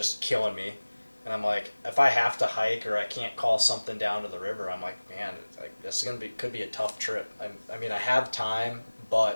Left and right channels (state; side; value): inverted; both; correlation -1.00